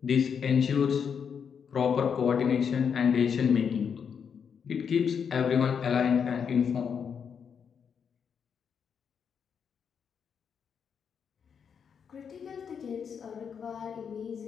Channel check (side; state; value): right; quieter; 7.0 dB